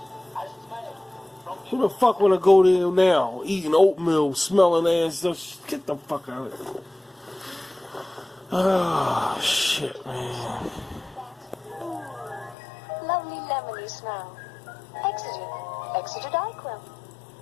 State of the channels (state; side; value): drops out; right; at 12.6 s